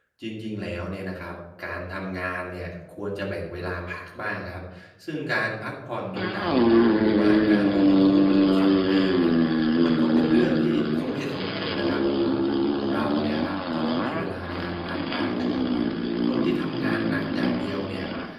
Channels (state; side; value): identical; both; correlation 1.00